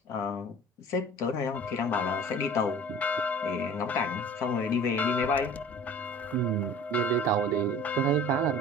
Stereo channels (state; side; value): normal; both; correlation 0.43